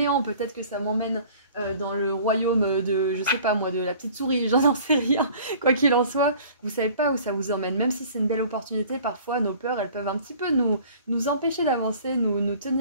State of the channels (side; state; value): both; inverted; correlation -0.48